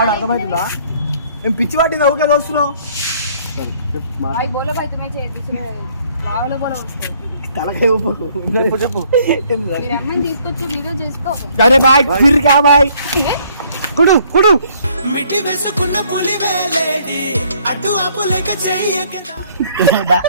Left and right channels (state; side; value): inverted; both; correlation -0.63